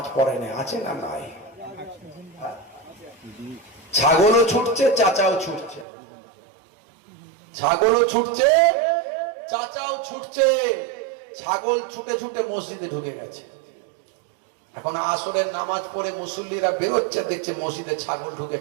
পড়ে না আছে না নাই ছাগলও ছুটছে চাচাও ছুটছে ছাগলও ছুটছে চাচাও ছুটছে ছাগল ছুটে ছুটে মসজিদে ঢুকে গেছে এখন আসরের নামাজ পড়ে মুসল্লিরা বেরোচ্ছে দেখছে মসজিদে ছাগল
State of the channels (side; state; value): left; drops out; at 5.9 s